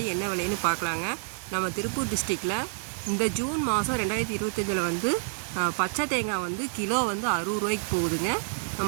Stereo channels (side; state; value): left; silent; digital silence